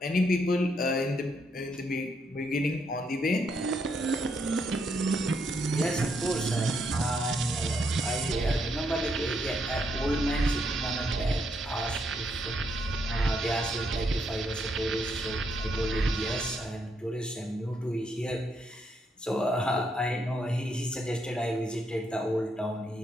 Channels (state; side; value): normal; both; correlation 0.76